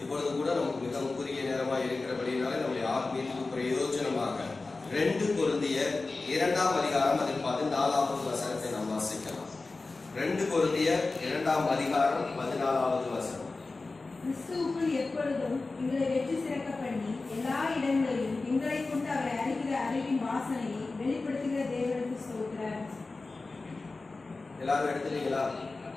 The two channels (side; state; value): right; quieter; 3.6 dB